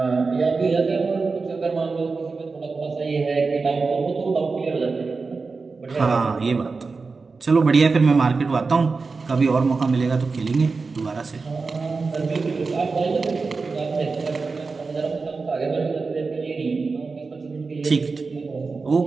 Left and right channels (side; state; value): left; quieter; 4.3 dB